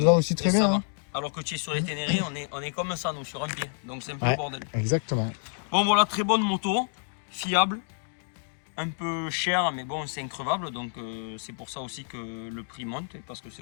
va aussi très et ça bien. va. Hein. Alors que tu es sur les Ténérés, on est comme ça, nous, sur un pied. Donc c'est un peu Ouais. le bordel. Exactement. Bon, voilà, très bonne moto, fiable, un peu cher, mais bon, c'est increvable. Donc c'est pour ça aussi que le prix monte, parce que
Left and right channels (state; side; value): silent; right; 59 dB below the other